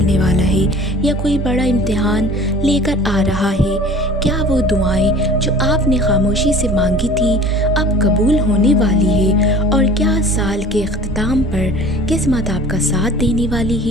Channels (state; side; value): normal; both; correlation 0.45